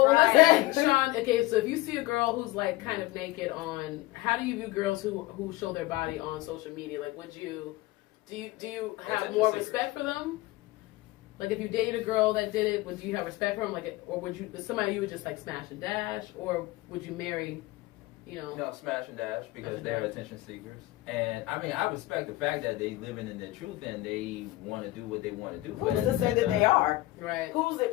Right. let's say, Sean. Okay, so if you see a girl who's like kind of naked on, how do you view girls who show their body on social media? Like, would you do you have Attention more seekers. respect for them? Like, if you dated a girl that did it, would you have respect for them? Like, or would you somebody you would just like smash and dash, or would you marry? You know. No, smash and dash because Smash and they're dash. attention seekers. And I mean, I respect the fact that they living in their truth and they want to do what they want to do. But Who's at to the say same that time- they are? Right. Who's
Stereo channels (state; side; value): quieter; right; 18.5 dB